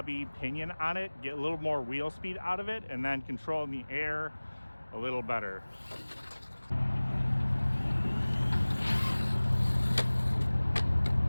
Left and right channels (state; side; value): inverted; both; correlation -1.00